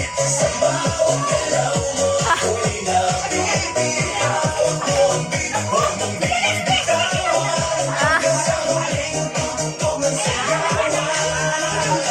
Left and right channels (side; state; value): both; identical; correlation 1.00